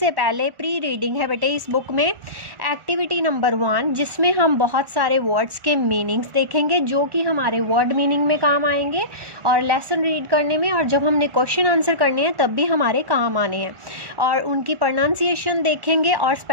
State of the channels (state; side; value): late; left; 1.4 ms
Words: पहले प्री रीडिंग है बेटे इस बुक में। एक्टिविटी नंबर 1 जिसमें हम बहुत सारे वर्ड्स के मीनिंग्स देखेंगे जो कि हमारे वर्ड मीनिंग में काम आएंगे और लेसन रीड करने में, और जब हमने क्वेश्चन आंसर करने हैं तब भी हमारे काम आने हैं। और उनकी प्रोनाउंसिएशन देखेंगे और